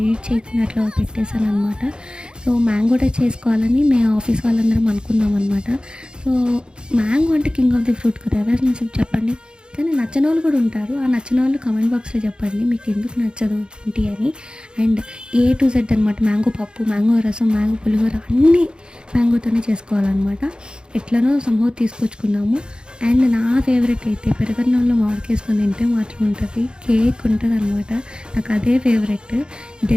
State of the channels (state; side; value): late; left; 0.049 ms